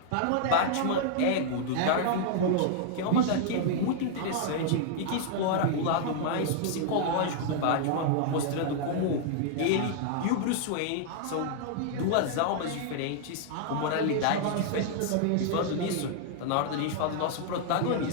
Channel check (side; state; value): both; different; correlation -0.01